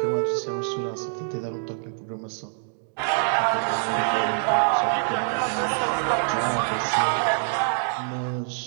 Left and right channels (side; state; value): left; silent; digital silence